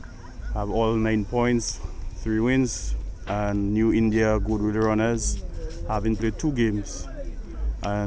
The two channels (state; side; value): identical; both; correlation 1.00